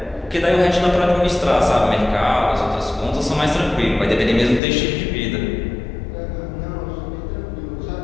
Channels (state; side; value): drops out; right; at 4.6 s